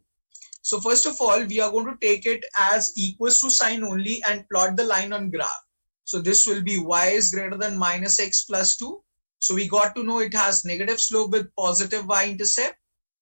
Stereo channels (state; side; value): inverted; both; correlation -1.00